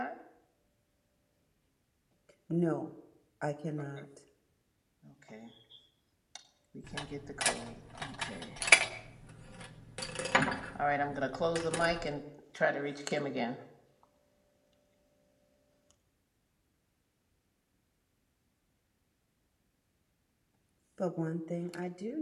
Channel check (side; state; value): both; identical; correlation 1.00